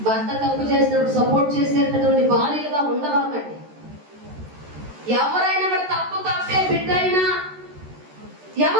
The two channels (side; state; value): left; late; 13 ms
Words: భర్త తప్పు చేసినప్పుడు సపోర్ట్ చేసేటటువంటి భార్యలుగా ఉండవాకండి. ఎవరైనా కూడా తప్పే, బిడ్డ అయినా